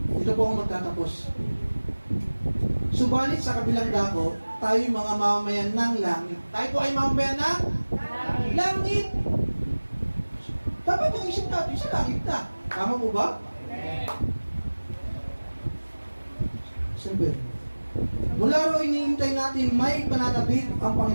Dito po ako magtatapos. Subalit sa kabilang dako, tayo'y mga mamamayan ng langit. Tayo po ay mamamayan ng langit. Dapat yung isip natin sa langit na. Tama po ba? Siyempre. Mula ro iniintay natin may pananabik ang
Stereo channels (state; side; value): inverted; both; correlation -1.00